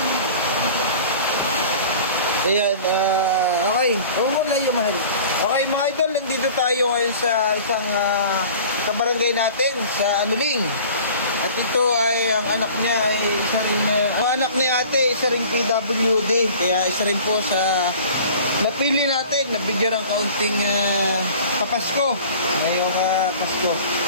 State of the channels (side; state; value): both; inverted; correlation -0.44